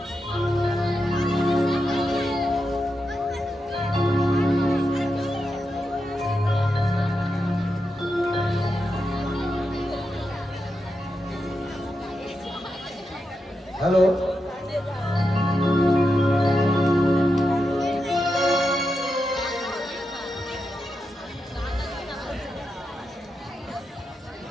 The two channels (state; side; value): normal; both; correlation 0.87